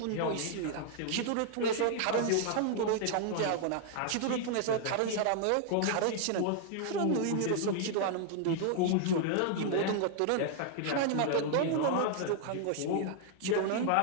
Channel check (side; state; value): both; different; correlation 0.00